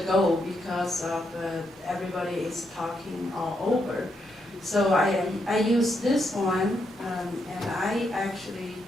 because of everybody is talking all over. So I use this one, and I actually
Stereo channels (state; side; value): normal; both; correlation 0.80